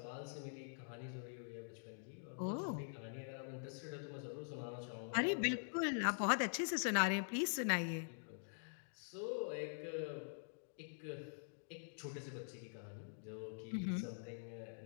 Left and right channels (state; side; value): silent; right; digital silence